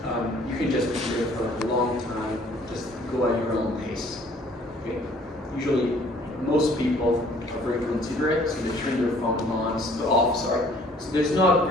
can just be there for a long time. Just go at your own pace. Okay? Usually, most people are very considerate, so they turn their phone on, so there's not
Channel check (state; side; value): normal; both; correlation 0.57